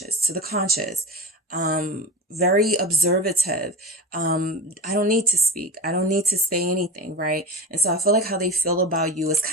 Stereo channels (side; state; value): both; normal; correlation 0.29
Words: to the conscious, very observative. I don't need to speak. I don't need to say anything, right? And so I feel like how they feel about you is